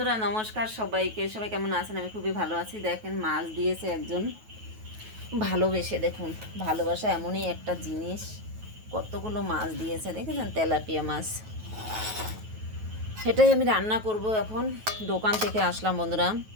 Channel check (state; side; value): late; left; 9.3 ms